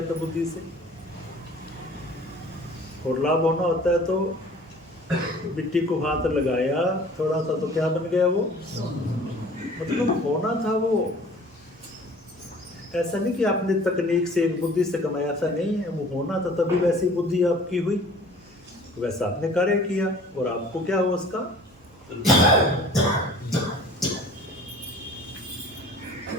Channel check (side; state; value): both; normal; correlation 0.49